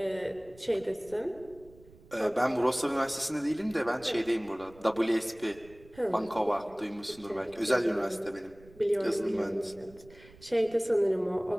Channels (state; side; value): noise; right; rumble, 23 dB below the sound